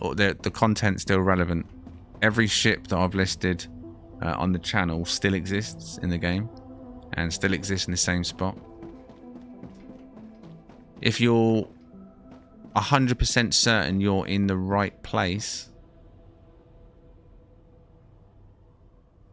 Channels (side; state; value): both; identical; correlation 1.00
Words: or the content's still relevant. Every ship that I've listed on the channel still exists in the game and still exists in the same spot. If you're 100% certain you're in the right place,